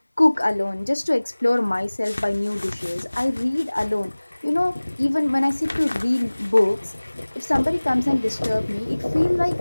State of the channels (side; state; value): both; inverted; correlation -1.00